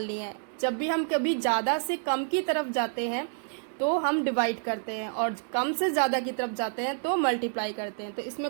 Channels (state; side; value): silent; left; digital silence